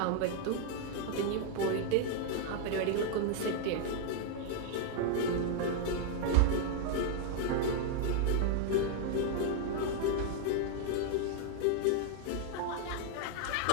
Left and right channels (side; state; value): both; different; correlation 0.00